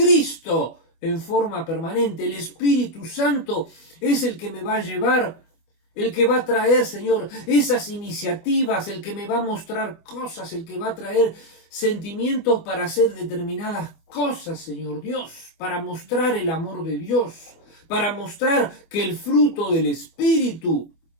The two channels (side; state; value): right; late; 25 ms